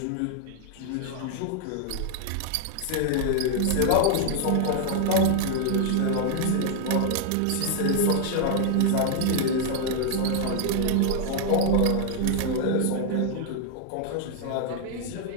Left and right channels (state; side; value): different; both; correlation 0.00